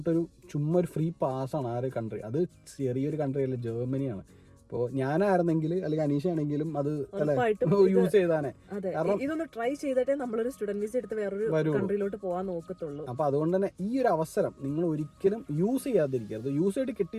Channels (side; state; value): both; identical; correlation 1.00